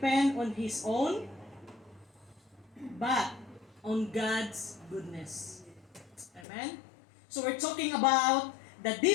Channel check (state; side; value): drops out; right; at 6.5 s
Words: on his own, but on God's goodness. Amen? So we're talking about the